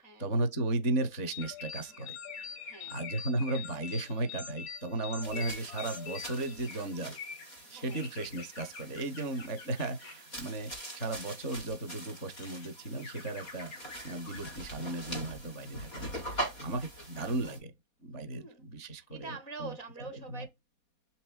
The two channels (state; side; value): late; right; 4.2 ms